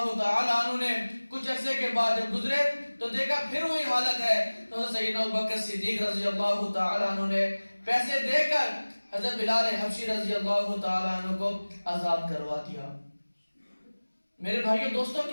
تعالی عنہ نے کچھ عرصے کے بعد جب گزرے تو دیکھا پھر وہی حالت ہے. تو حضرت سیدنا ابوبکر صدیق رضی اللہ تعالی عنہ نے پیسے دے کر حضرت بلال حبشی رضی اللہ تعالی عنہ کو آزاد کروا دیا. میرے بھائیو دوستوں،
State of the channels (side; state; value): both; inverted; correlation -1.00